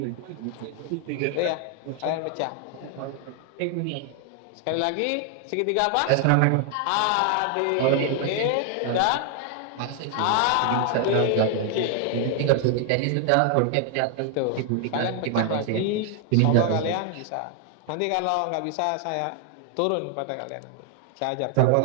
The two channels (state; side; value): different; both; correlation 0.00